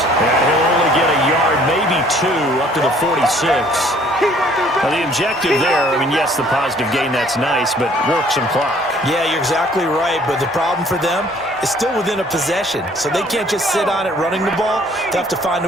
And he'll only get a yard, maybe 2, up to the 46. Now, the objective there, I mean, yes, the positive gain, that's nice, but work some clock. Yeah, you're exactly right, but the problem for them is still within a possession, so they can't just sit on it running the ball. They have to find a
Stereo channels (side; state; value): both; normal; correlation 0.58